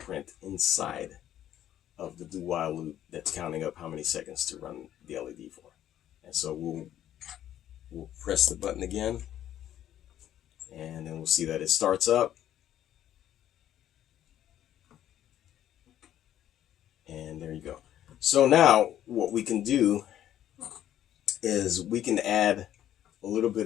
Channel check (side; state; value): right; quieter; 11.6 dB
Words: inside of the do while loop that's counting up how many seconds to run the LED for. And so we'll press the button again, and then we'll see that it starts up. And there you go. So now what we can do is we can add a little bit